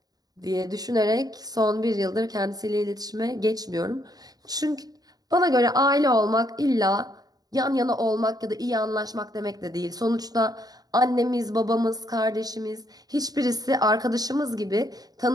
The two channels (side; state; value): left; late; 0.18 ms